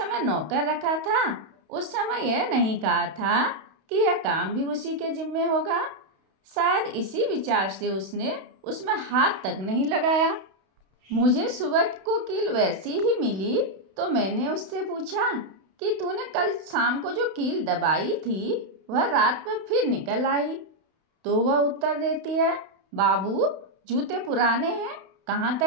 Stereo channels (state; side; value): late; left; 31 ms